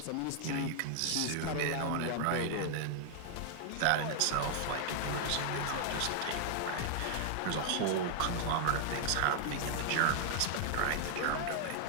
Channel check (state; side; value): different; both; correlation 0.00